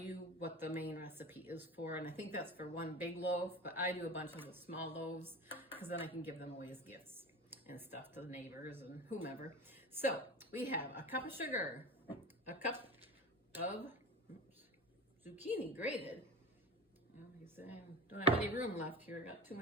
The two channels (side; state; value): both; normal; correlation 0.31